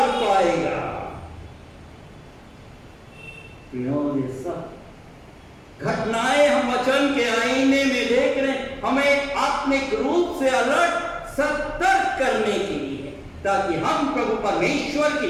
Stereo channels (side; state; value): both; identical; correlation 1.00